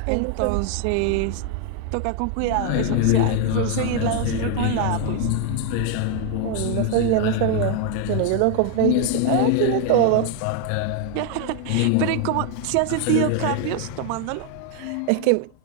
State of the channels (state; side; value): different; both; correlation 0.00